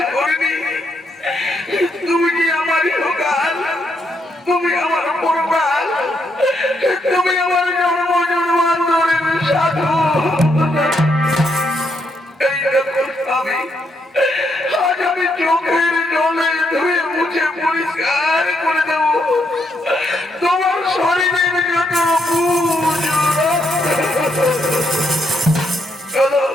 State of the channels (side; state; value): both; normal; correlation 0.77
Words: করিনি। তুমি কি আমার ইহকাল, তুমি আমার পরকাল, তুমি আমার জন্ম জন্মান্তরের সাধু। এই দেখো স্বামী, আজ আমি চোখের জলে ধুয়ে মুছে পরিষ্কার করে দেব তোমার শরীরের যত বুঝ। চলো